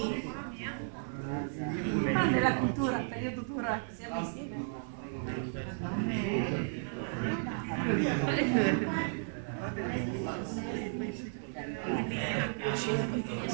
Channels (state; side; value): silent; left; digital silence